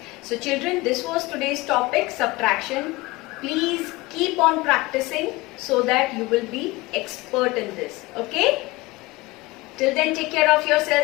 So children, this was today's topic, subtraction. Please keep on practicing so that you will be expert in this. Okay? Till then, take care of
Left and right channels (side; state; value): right; quieter; 21.4 dB